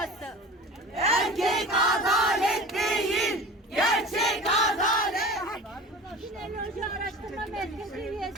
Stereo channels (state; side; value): normal; both; correlation 0.36